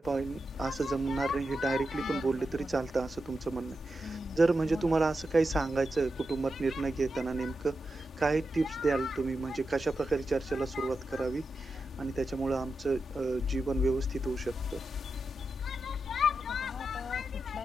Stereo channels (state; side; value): normal; both; correlation 0.89